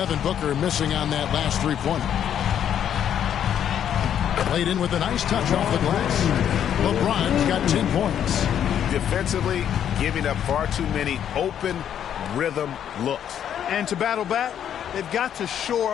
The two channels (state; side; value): quieter; right; 9.5 dB